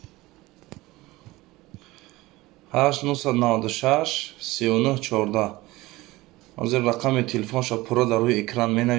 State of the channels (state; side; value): quieter; left; 19.6 dB